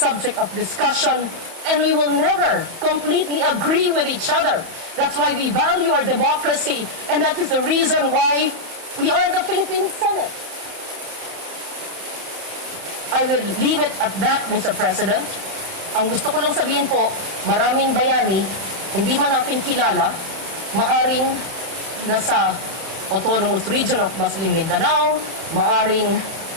of discussion, and we will never completely agree with each other. That's why we value our democracy, and that is the reason why we are the Philippine Senate. I will leave it at that, Mr. President. Ang gusto ko lang sabihin po, maraming bayani, hindi man natin kilala, maaring nasa autonomous region of Muslim Mindanao, maaring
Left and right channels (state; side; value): late; left; 31 ms